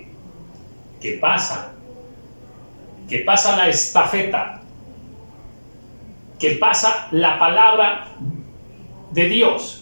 que pasa la estafeta, que pasa la palabra de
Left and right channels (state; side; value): inverted; both; correlation -1.00